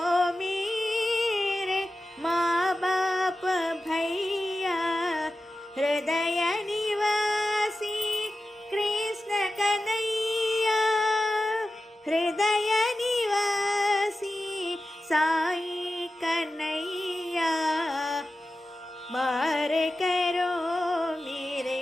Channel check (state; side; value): normal; both; correlation 0.93